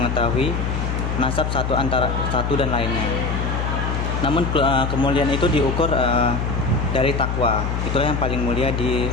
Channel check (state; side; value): noise; left; hum, 1 dB below the sound